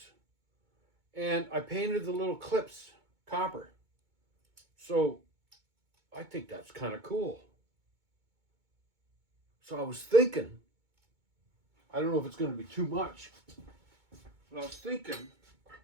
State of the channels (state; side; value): late; left; 2.2 ms